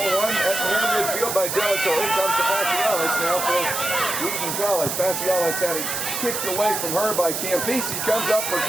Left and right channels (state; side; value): noise; right; hiss, 3 dB below the sound